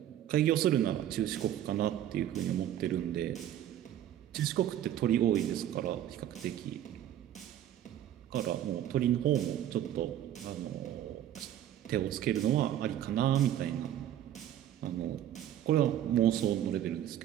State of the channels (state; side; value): quieter; left; 11.4 dB